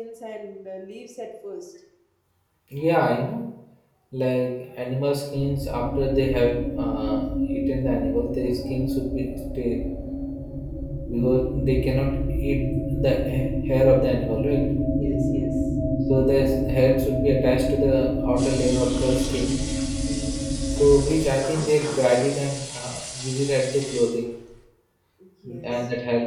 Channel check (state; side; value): identical; both; correlation 1.00